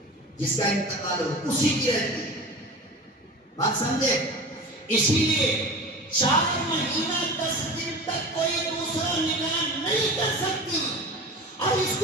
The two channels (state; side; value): normal; both; correlation 0.33